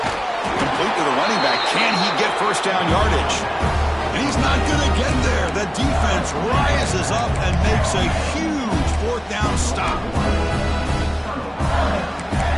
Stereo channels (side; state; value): both; identical; correlation 1.00